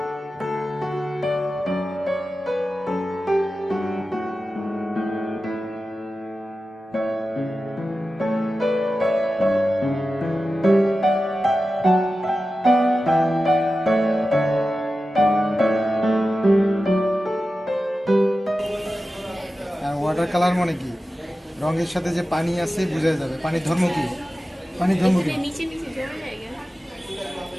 ওয়াটার কালার মানে কি? রঙের সাথে যে পানি আছে বোঝা যাবে। পানির ধর্ম কি? পানির ধর্ম কি? নিচে নিচে জমে যায়,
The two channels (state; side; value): normal; both; correlation 0.93